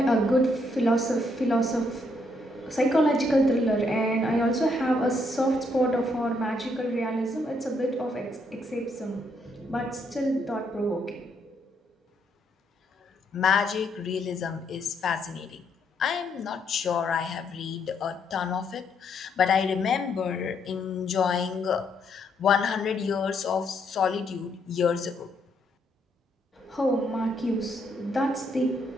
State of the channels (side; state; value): both; normal; correlation 0.74